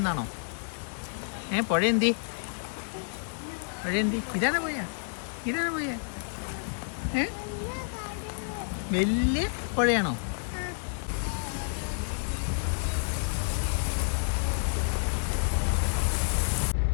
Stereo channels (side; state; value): right; silent; 58 dB below the other